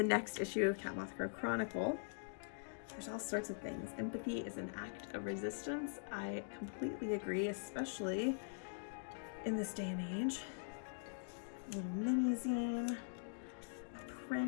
next issue of catmothcrow Chronicle. There's all sorts of things. Empathy is an act of resistance. I completely agree, especially in this day and age. A little mini zine, a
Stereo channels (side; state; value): right; silent; digital silence